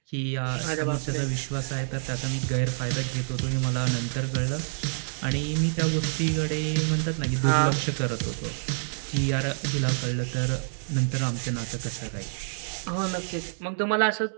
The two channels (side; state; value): left; silent; digital silence